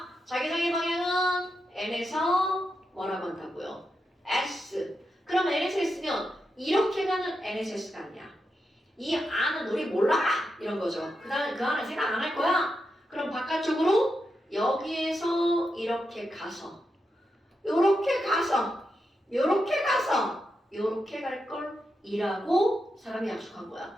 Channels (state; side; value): normal; both; correlation 0.86